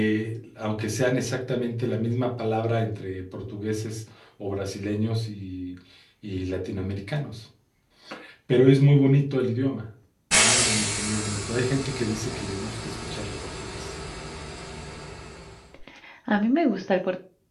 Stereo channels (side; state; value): both; identical; correlation 1.00